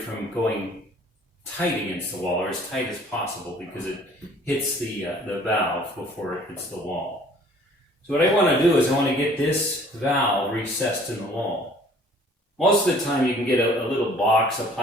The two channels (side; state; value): both; normal; correlation 0.54